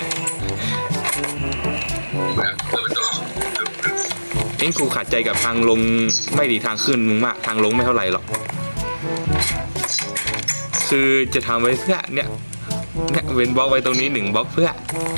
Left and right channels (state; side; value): inverted; both; correlation -1.00